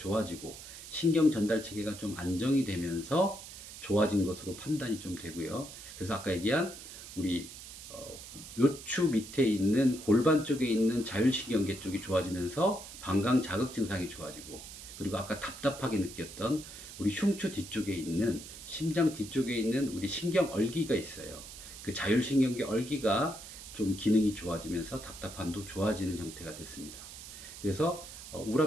신경 전달 체계가 좀 안정이 되면서 좋아진 것으로 판단이 좀 되고요. 그래서 아까 얘기한 우리 요추 밑에 있는 골반 쪽에 있는 자율신경계 쪽이 좋아지면서 방광 자극 증상이 좋아지고, 그리고 아까 답답하게 느꼈던 우리 흉추 뒤쪽에 있는 심장 뒤쪽에 있는 우리 신경 얼기가 있어요. 그 자율신경계 얼기가 좀 기능이 좋아지면서 답답함도 좋아지는 형태가 됐습니다. 그래서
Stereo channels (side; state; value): right; noise; hiss, 13 dB below the sound